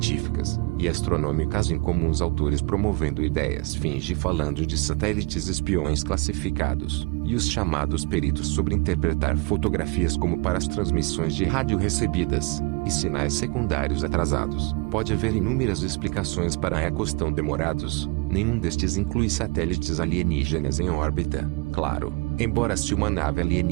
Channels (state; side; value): quieter; left; 26.8 dB